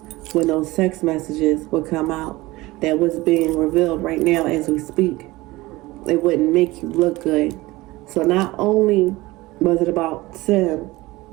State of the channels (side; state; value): left; quieter; 20.0 dB